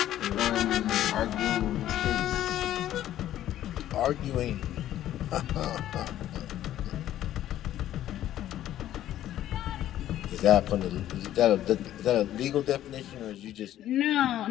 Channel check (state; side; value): quieter; right; 12.5 dB